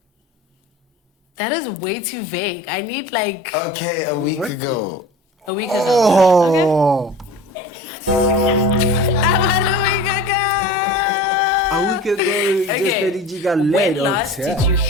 That is way too vague. I need like Okay, a week ago. a week ago. Oh, About a week ago. a week ago, Okay. just Eddie G got When laid on last did tap. you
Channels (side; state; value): both; normal; correlation 0.38